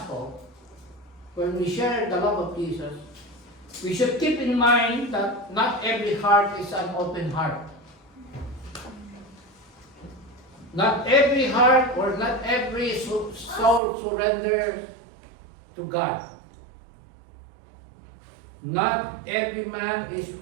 when we share the love of Jesus, we should keep in mind that not every heart is an open heart. Not every heart or not every soul surrenders to God. Not every man is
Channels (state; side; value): drops out; left; at 13.8 s